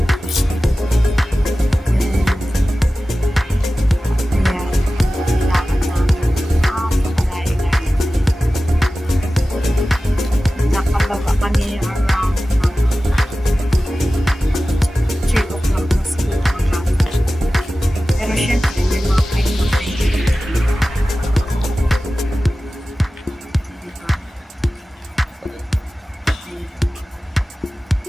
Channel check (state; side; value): normal; both; correlation 0.95